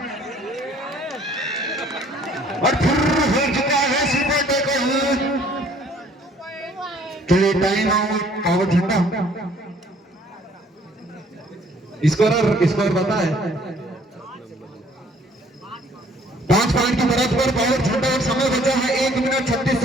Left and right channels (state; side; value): normal; both; correlation 0.59